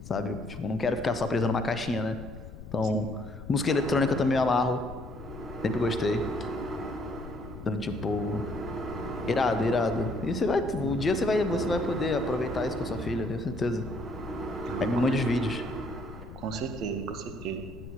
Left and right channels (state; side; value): noise; left; rumble, 13 dB below the sound